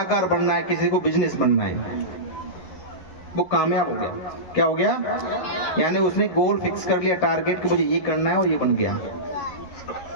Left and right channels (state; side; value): late; right; 11 ms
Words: बनना है, किसी को बिजनेस बनना है। वो कामयाब हो गया। क्या हो गया? यानी उसने गोल फिक्स कर लिया, टारगेट कि मुझे ये करना है और ये बन गया।